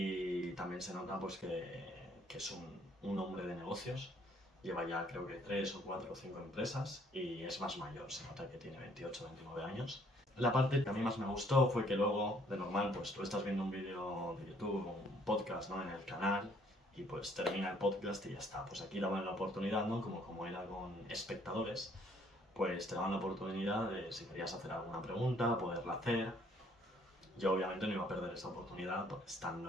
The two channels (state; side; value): normal; both; correlation 0.63